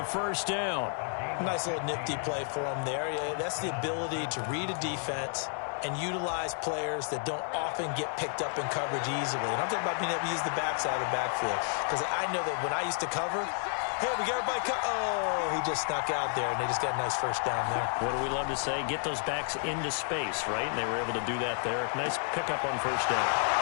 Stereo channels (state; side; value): silent; right; 57 dB below the other